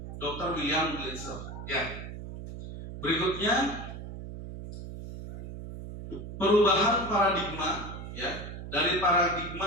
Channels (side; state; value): right; noise; hum, 10 dB below the sound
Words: Dr. William Glasser. Ya. Berikutnya perubahan paradigma ya, dari